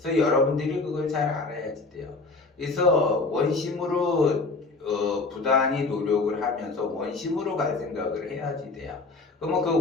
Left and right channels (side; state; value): right; quieter; 3.7 dB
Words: 여러분들이 그걸 잘 알아야지 돼요. 그래서 원심으로 부단히 노력을 하면서 원심으로 갈 생각을 해야지 돼요. 그러면